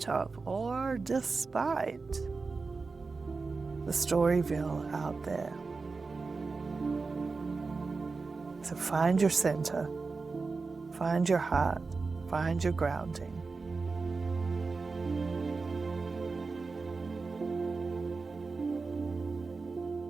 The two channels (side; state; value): left; quieter; 4.2 dB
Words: of or despite the Storyville out there. So find your center, find your heart, find your grounding.